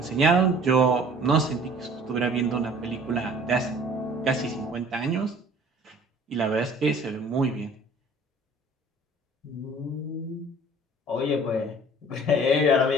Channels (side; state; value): both; normal; correlation 0.50